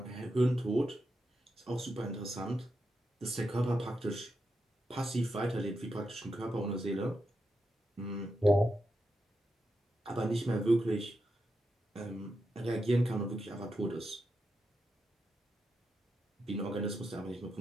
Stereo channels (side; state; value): both; normal; correlation 0.86